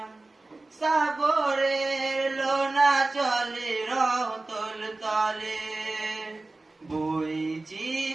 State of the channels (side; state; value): left; quieter; 3.2 dB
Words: সাগরের লোনা চলে রতল তলে,